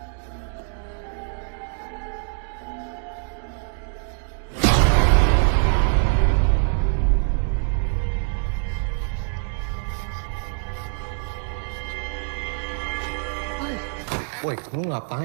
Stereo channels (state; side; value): silent; left; 62 dB below the other